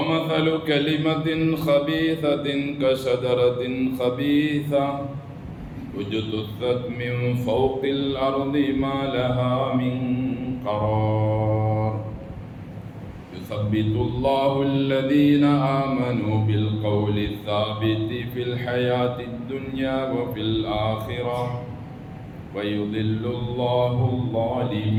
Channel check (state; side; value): identical; both; correlation 1.00